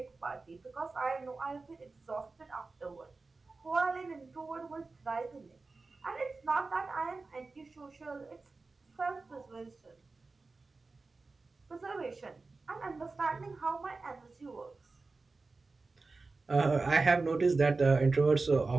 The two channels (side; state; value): left; quieter; 3.8 dB